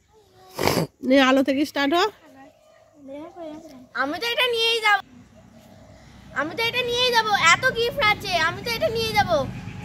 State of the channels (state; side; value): identical; both; correlation 1.00